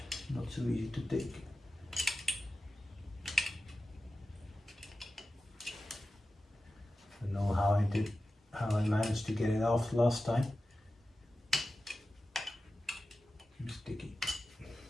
not so easy to take. I don't know how I managed to get it off last time. It's sticky.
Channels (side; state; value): both; normal; correlation 0.93